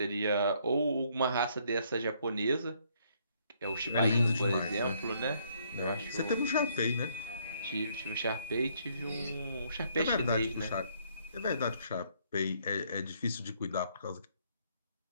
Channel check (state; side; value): inverted; both; correlation -0.68